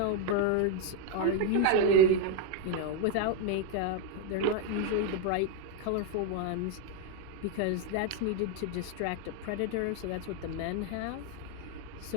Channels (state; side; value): different; both; correlation 0.01